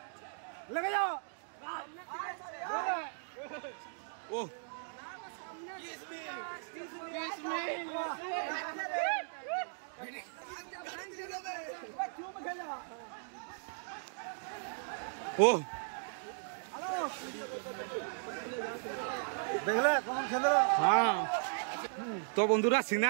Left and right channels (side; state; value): left; silent; digital silence